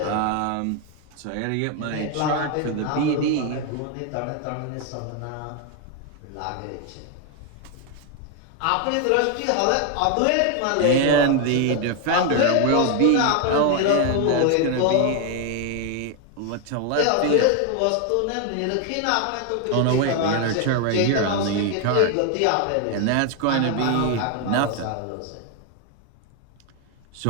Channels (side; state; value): both; different; correlation 0.01